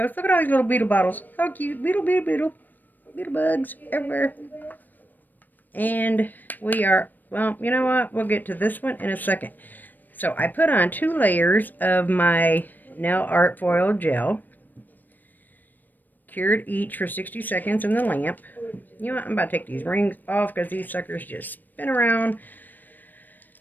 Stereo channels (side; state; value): right; late; 0.089 ms